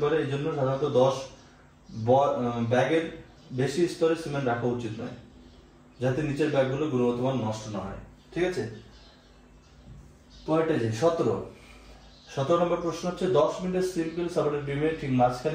পারে, এই জন্য সাধারণত 10 ব্যাগের বেশি স্তরে সিমেন্ট রাখা উচিত নয়, যাতে নিচের ব্যাগগুলো গুণগত মান নষ্ট না হয়। ঠিক আছে, পরেরটা যে 17 নম্বর প্রশ্ন হচ্ছে 10 মিনিটের সিম্পল সাপোর্টেড বিমে ঠিক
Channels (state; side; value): identical; both; correlation 1.00